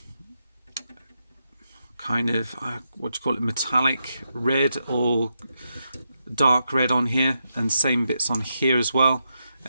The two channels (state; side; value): inverted; both; correlation -0.84